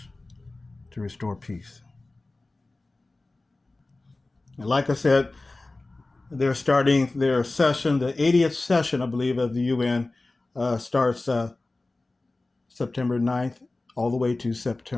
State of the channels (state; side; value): quieter; right; 3.1 dB